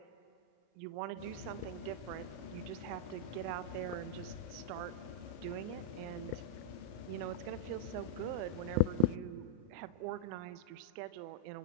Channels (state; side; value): late; left; 34 ms